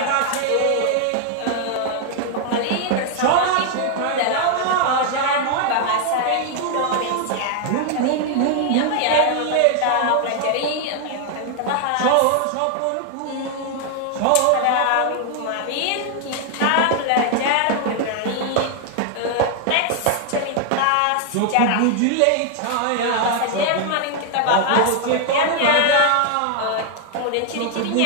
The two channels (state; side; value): different; both; correlation 0.00